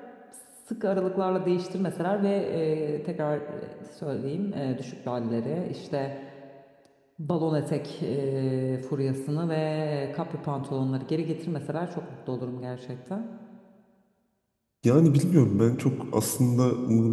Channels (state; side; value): identical; both; correlation 1.00